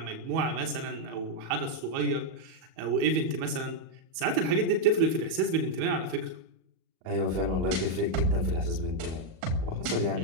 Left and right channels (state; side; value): late; left; 38 ms